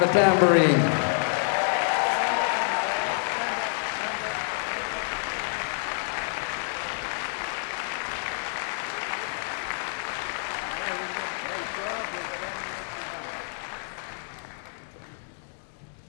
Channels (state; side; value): silent; right; 59 dB below the other